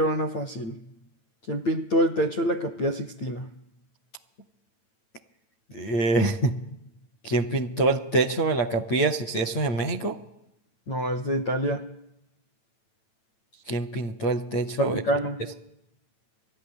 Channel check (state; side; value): late; right; 9.0 ms